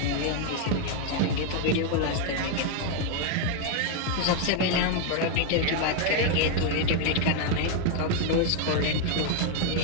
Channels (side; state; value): both; different; correlation 0.01